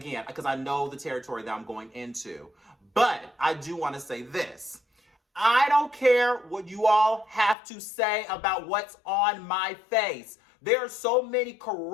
because I know the territory that I'm going into. But I do want to say this. I don't care what you all have to say about what's on my face. There are so many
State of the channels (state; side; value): drops out; right; at 7.6 s